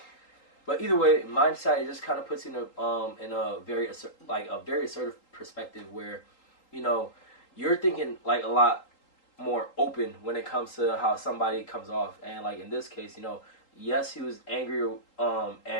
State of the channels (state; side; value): late; right; 3.8 ms